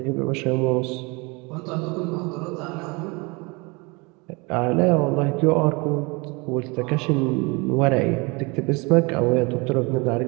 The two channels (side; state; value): left; quieter; 27.8 dB